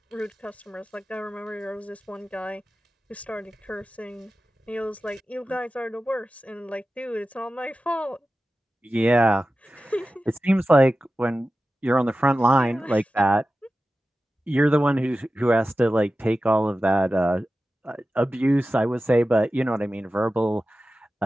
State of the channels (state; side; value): normal; both; correlation 0.94